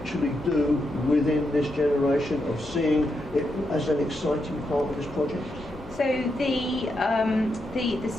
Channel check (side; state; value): both; normal; correlation 0.83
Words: do within this generation, of seeing it as an exciting part of this project? So the